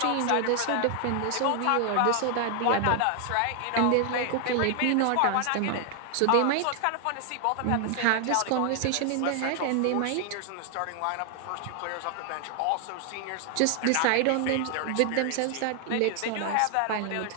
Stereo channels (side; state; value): both; different; correlation 0.00